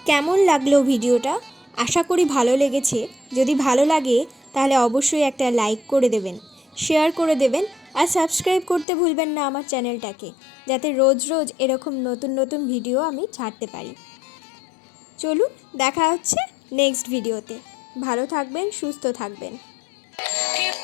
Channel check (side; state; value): right; drops out; at 8.8 s